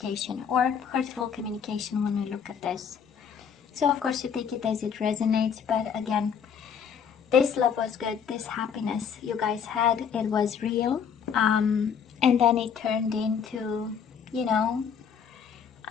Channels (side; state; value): right; quieter; 7.2 dB